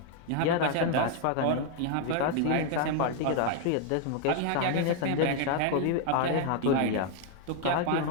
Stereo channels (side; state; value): both; different; correlation 0.00